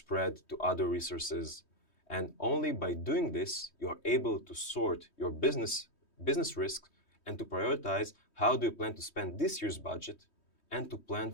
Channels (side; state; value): right; late; 3.2 ms